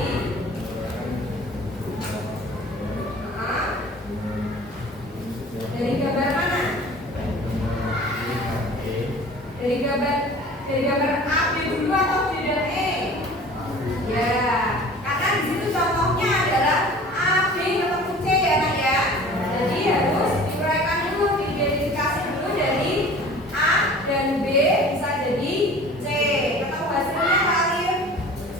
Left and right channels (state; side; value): normal; both; correlation 0.44